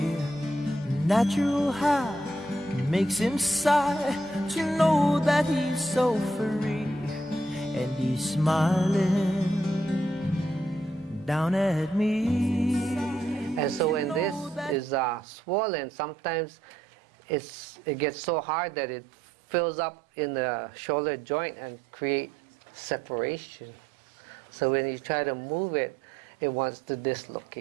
Natural high makes him sigh to know that he's so free, and he's smiling down at me. And so when this is swollen, sometimes it gets so hard that it fills up in the shoulder joint and create separation. So when you try to move it, it wants to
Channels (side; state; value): left; drops out; at 15.2 s